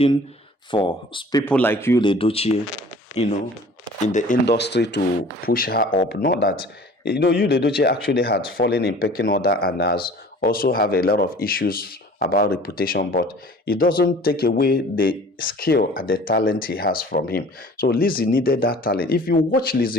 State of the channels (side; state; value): both; normal; correlation 0.47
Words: for people like you, Edochie, in the industry to push her up. Not that you, Edochie actually had fallen in pecking order and has also have a lot of issues about reputation, but it doesn't take away the skill and the talent he has from him. So Lizzy needed that talent. If you watch